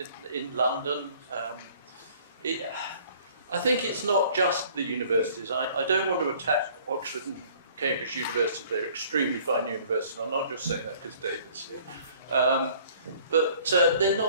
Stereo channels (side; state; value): both; inverted; correlation -0.54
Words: in London. I think it's not just the universities. I don't want to attack Oxford and Cambridge University. They're extremely fine universities. I'm not just saying that because David's here. But they're